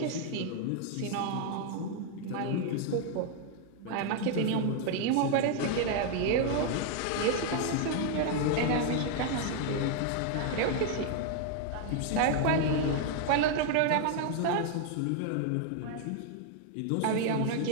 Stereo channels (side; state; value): both; different; correlation 0.00